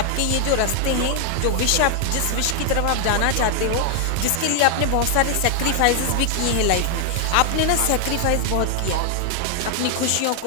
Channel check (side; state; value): both; different; correlation 0.00